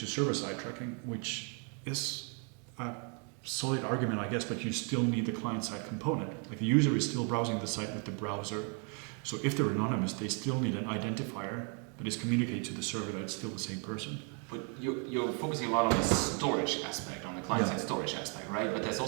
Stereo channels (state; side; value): quieter; left; 38.5 dB